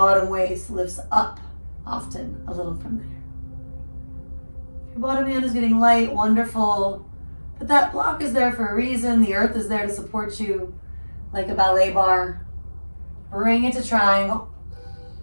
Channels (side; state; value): both; inverted; correlation -1.00